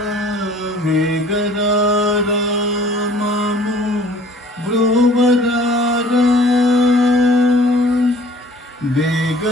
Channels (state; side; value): normal; both; correlation 0.52